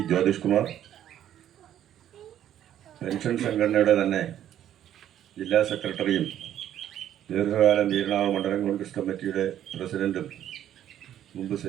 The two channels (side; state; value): left; quieter; 11.1 dB